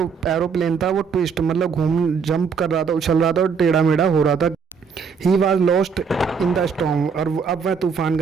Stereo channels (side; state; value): left; quieter; 5.9 dB